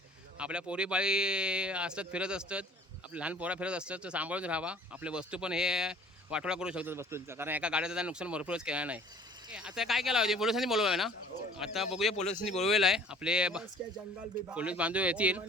आपल्या पोरीबाळी असतात, फिरत असतात, आपले लहान पोरं फिरत असतात. तर सांभाळून राहावा. आपले वस्तू पण हे वाटोळा करू शकतात वस्तूंचा, कारण एका गाड्याचं नुकसान भरपूरच केलं नाही. आता काय केलं होते, पोलिसांनी बोलवलं आहे ना. आता बघूया, पोलिसांनी बोलवलेलं आहे. आपले पोलीस बांधव येतील.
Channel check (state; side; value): normal; both; correlation 0.50